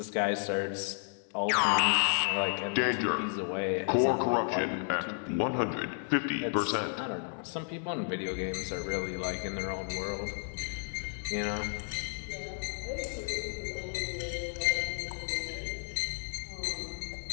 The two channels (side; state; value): right; silent; 56 dB below the other